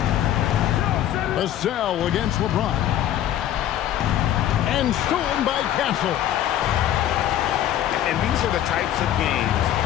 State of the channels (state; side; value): quieter; right; 11.7 dB